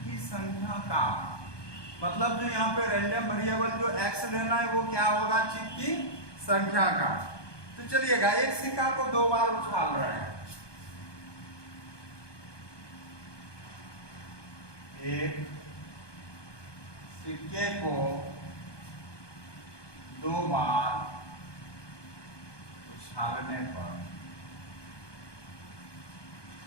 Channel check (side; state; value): right; late; 1.2 ms